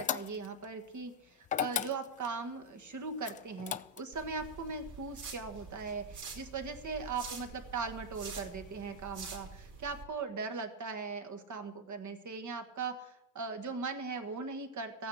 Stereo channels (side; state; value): both; normal; correlation 0.00